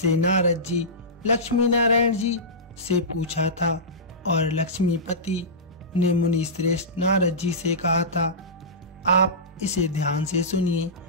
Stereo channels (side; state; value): both; normal; correlation -0.18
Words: नारद जी लक्ष्मी नारायण जी से पूछा था और लक्ष्मीपति ने मुनि श्रेष्ठ नारद जी से कहा था, आप इसे ध्यान से सुनिए।